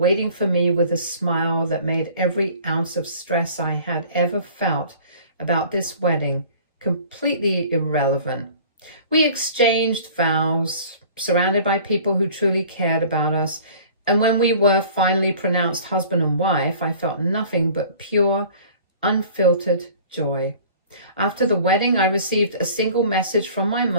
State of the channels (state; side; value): inverted; both; correlation -0.47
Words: for me with a smile that made every ounce of stress I had ever felt about this wedding completely irrelevant. We exchanged vows, surrounded by people who truly cared about us, and when we were finally pronounced husband and wife, I felt nothing but pure, unfiltered joy. After the wedding, I received a single message from my